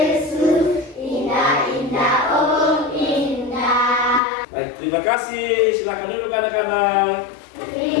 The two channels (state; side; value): drops out; right; at 4.2 s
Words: indah indah oh indah. Baik, terima kasih. Silakan duduk anak-anak.